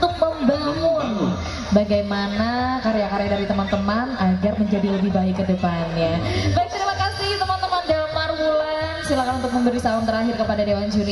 membangun bagaimana karya-karya dari teman-teman agar menjadi lebih baik ke depannya. Baik, terima kasih teman-teman Damar Wulan. Silakan untuk memberi salam terakhir kepada dewan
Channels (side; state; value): both; identical; correlation 1.00